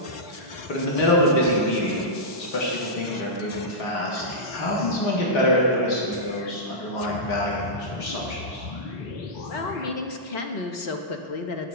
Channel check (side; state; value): right; late; 3.8 ms